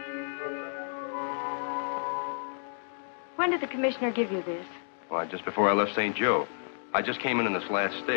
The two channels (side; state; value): right; silent; digital silence